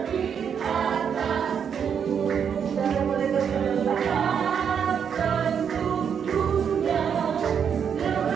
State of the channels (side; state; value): left; quieter; 7.5 dB